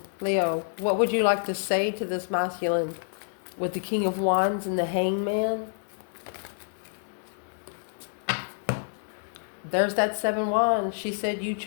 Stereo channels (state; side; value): silent; right; 59 dB below the other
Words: Leo, what would you like to say to this masculine with the King of Wands and the Hangman? There's that 7 wands. She said you